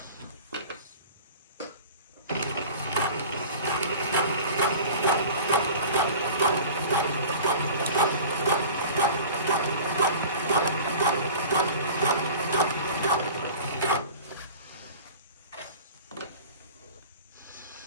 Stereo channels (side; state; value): both; inverted; correlation -0.40